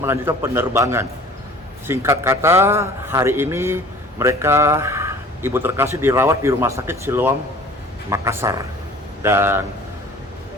penerbangan. Singkat kata, hari ini mereka, ibu terkasih dirawat di Rumah Sakit Siloam Makassar. Dan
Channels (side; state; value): both; normal; correlation 0.46